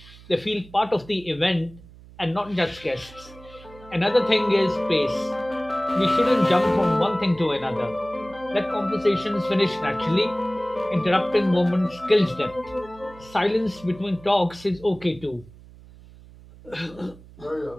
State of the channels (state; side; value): noise; right; hum, 21 dB below the sound